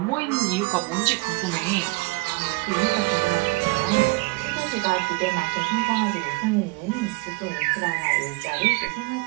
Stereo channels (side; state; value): left; quieter; 24.9 dB